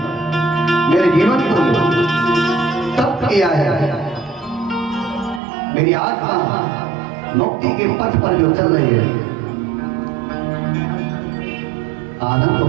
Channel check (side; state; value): left; drops out; at 5.4 s